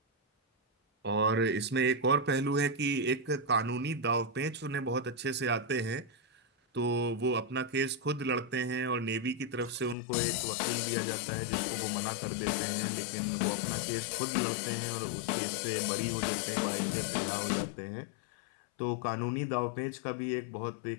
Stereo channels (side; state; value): right; drops out; at 10.0 s